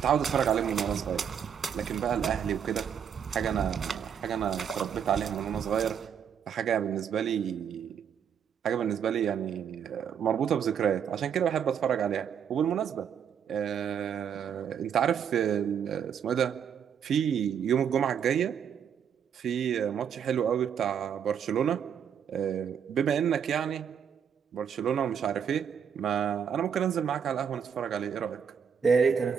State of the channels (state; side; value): quieter; left; 7.8 dB